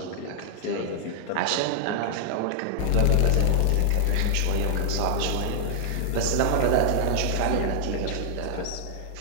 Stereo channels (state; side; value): different; both; correlation -0.01